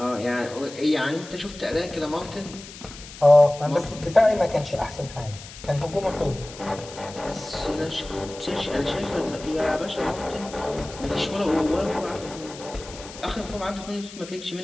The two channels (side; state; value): left; noise; hiss, 15 dB below the sound